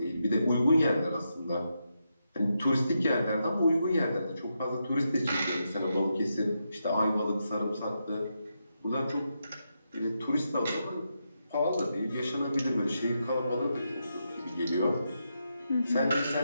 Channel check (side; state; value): both; inverted; correlation -0.84